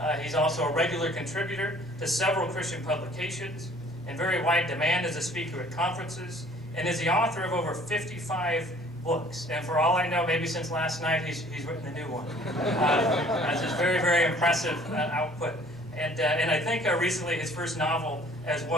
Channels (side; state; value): both; normal; correlation 0.54